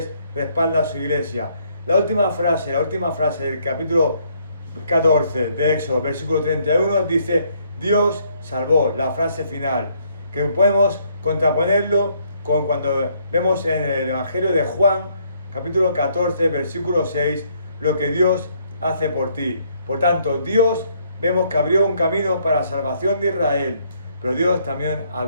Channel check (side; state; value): both; inverted; correlation -0.68